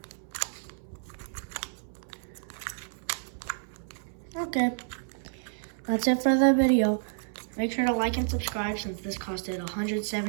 Okay, that's it for the video. Make sure to like and subscribe since this costed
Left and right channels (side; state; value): left; silent; 58 dB below the other